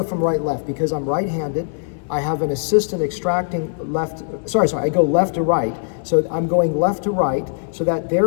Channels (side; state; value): right; silent; digital silence